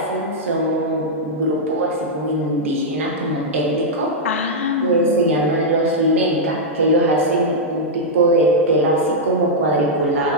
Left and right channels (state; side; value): normal; both; correlation -0.06